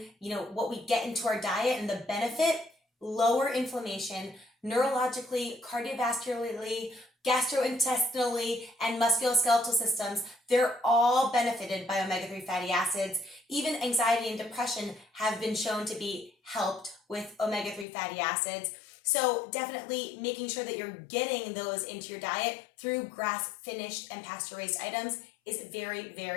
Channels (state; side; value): drops out; right; at 17.9 s